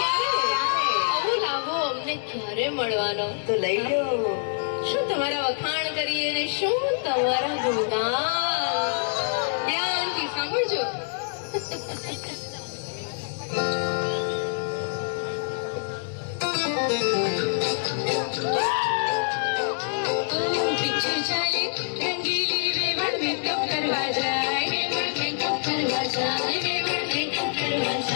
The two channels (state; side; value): silent; right; digital silence